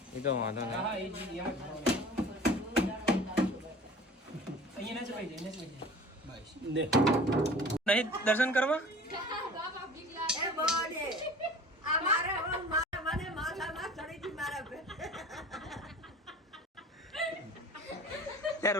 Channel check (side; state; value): both; normal; correlation 0.43